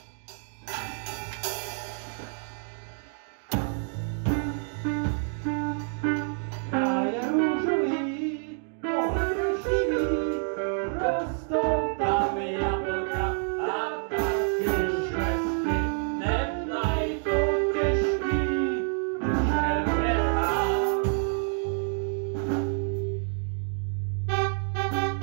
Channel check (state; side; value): silent; left; 57 dB below the other